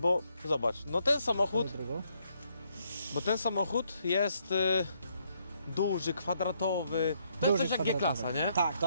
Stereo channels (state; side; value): inverted; both; correlation -0.73